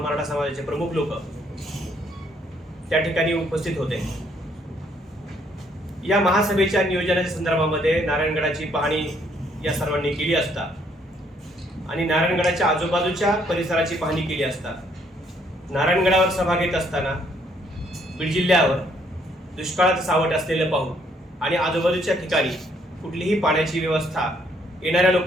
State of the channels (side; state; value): both; normal; correlation 0.68